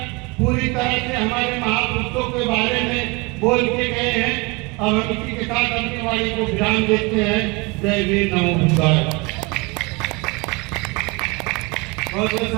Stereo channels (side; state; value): left; quieter; 26.4 dB